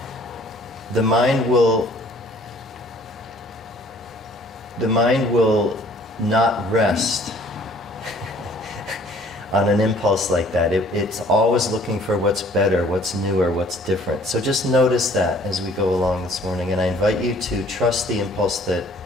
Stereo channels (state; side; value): normal; both; correlation 0.56